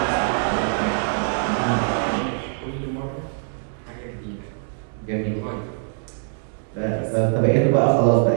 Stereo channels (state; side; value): silent; left; 63 dB below the other